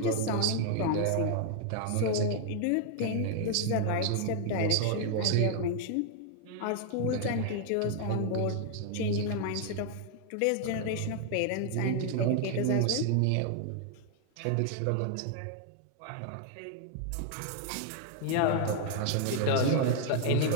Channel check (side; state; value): both; different; correlation 0.00